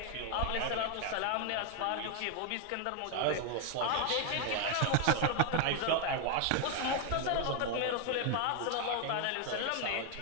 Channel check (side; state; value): both; different; correlation 0.01